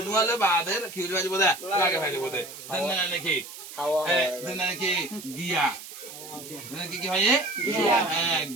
বাদের খিল বাজিব দে লাগে ফেলিব দে দেন নাকি দেন নাকি গিয়া কি কি হয়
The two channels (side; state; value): right; noise; hiss, 13 dB below the sound